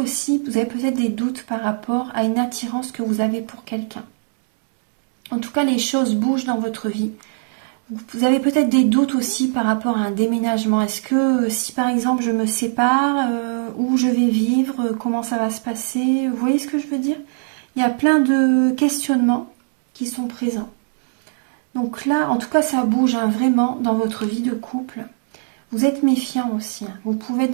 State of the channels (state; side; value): silent; left; digital silence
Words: vous avez peut-être des doutes par rapport à une attirance que vous avez pour quelqu'un. En tout cas, les choses bougent dans votre vie. Vous avez peut-être des doutes aussi par rapport à un déménagement. Est-ce que si par exemple je me sépare, où je vais vivre, comment ça va se passer? Vous voyez ce que je veux dire? Il y a plein de questionnements qui sont présents. Donc là, en tout cas, ça bouge vraiment dans votre vie de couple. Vous êtes méfiant aussi. Vous pouvez être